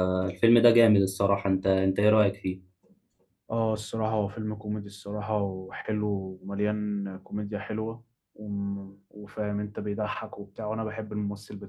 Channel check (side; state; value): both; identical; correlation 1.00